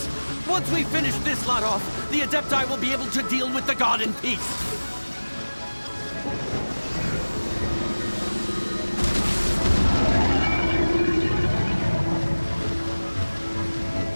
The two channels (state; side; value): inverted; both; correlation -1.00